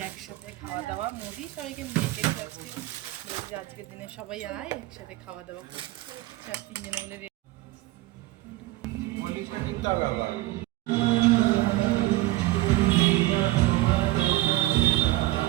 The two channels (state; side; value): quieter; left; 18.2 dB